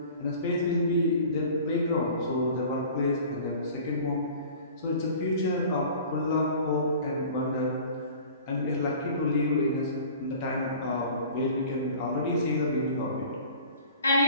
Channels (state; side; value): inverted; both; correlation -0.44